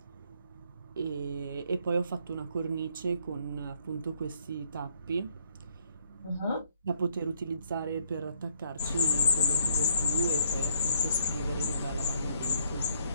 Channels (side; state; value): both; inverted; correlation -0.68